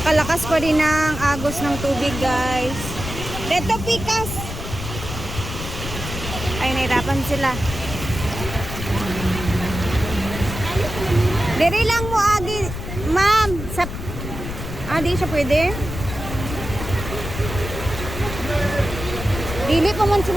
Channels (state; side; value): noise; left; rumble, 7 dB below the sound